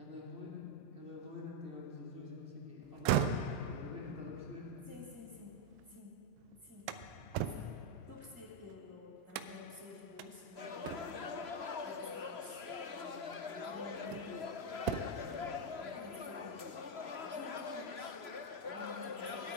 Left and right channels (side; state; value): right; late; 2.3 ms